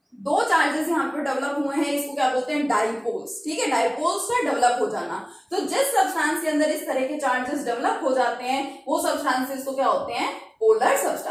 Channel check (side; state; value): both; identical; correlation 1.00